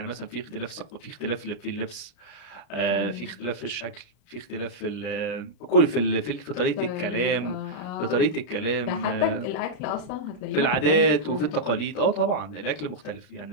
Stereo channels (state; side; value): late; right; 33 ms